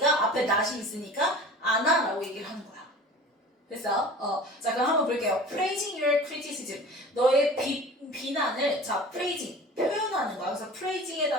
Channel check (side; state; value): both; normal; correlation 0.41